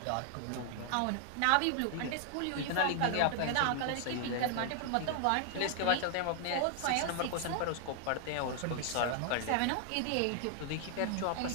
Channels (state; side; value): different; both; correlation 0.00